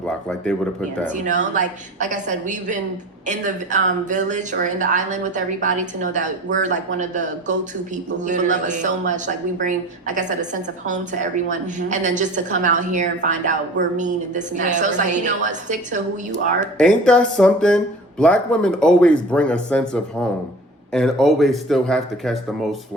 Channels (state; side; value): normal; both; correlation 0.39